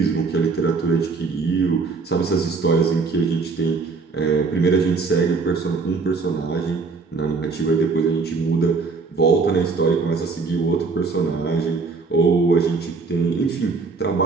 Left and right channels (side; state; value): left; quieter; 4.4 dB